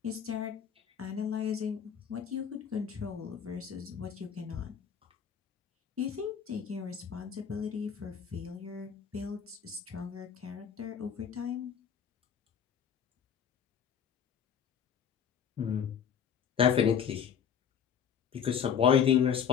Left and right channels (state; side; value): quieter; right; 7.8 dB